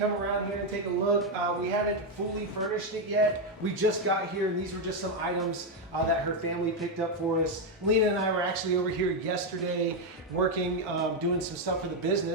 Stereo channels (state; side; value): normal; both; correlation 0.04